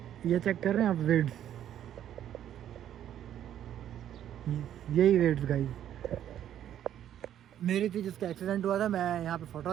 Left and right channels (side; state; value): left; quieter; 10.8 dB